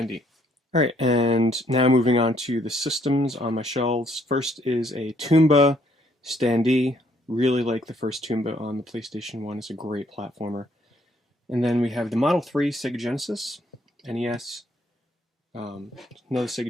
Alright, and now moving on to the systems on my shelves. First is a Toomba standee. Really like the first Toomba on the PlayStation 1. It's a great platformer. And then we have the Model 3 Sega Genesis, NES, another Sega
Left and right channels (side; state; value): both; normal; correlation 0.67